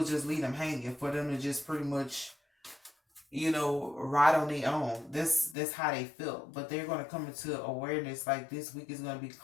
just leave them hanging for them to just pretty much, ride on their own. That's how they feel. But they're gonna come into awareness like this week is gonna be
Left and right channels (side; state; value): right; drops out; at 5.6 s